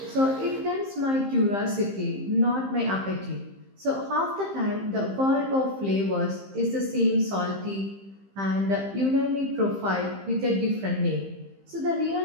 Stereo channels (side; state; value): left; late; 15 ms